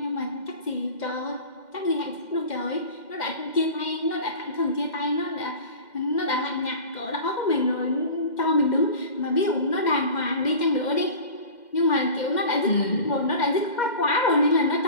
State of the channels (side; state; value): right; late; 2.1 ms